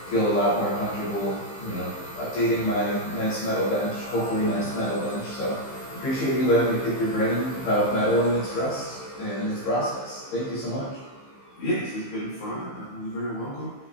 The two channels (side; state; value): right; late; 15 ms